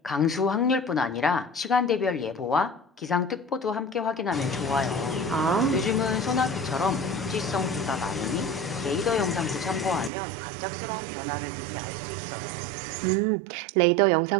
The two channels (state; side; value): drops out; left; at 10.1 s